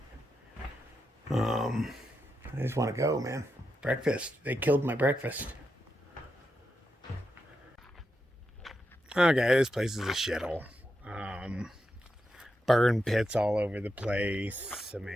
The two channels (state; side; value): normal; both; correlation 0.86